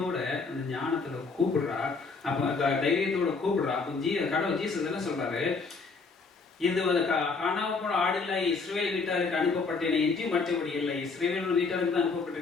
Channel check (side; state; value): right; quieter; 4.4 dB